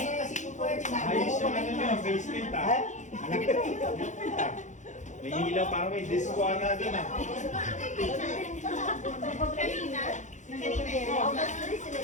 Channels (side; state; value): right; late; 0.35 ms